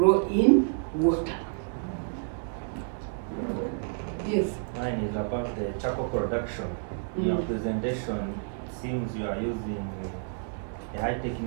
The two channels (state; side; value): silent; left; digital silence